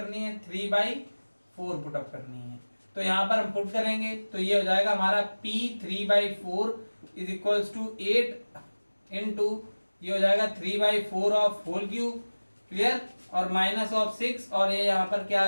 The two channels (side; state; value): both; inverted; correlation -1.00